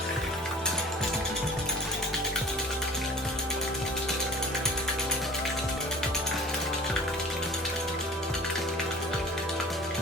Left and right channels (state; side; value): normal; both; correlation 0.44